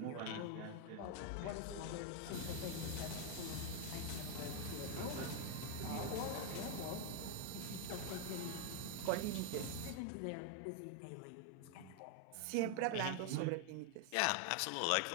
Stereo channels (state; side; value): different; both; correlation 0.00